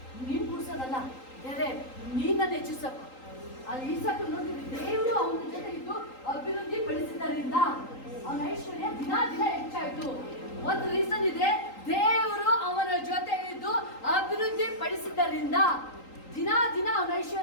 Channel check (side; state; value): right; late; 3.8 ms